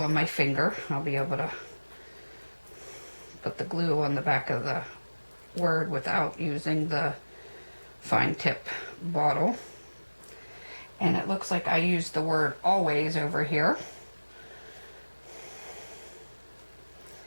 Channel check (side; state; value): both; inverted; correlation -1.00